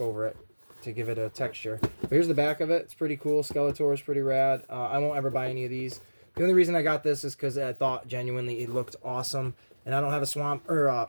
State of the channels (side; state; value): both; inverted; correlation -1.00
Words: over it to give it a texture. But here's the back of it. It's pretty cool. Skeletor is pretty rad. I won't ever buy any of these. The only reason I got this is because I thought genuinely it looked awesome. And I don't have a Swamp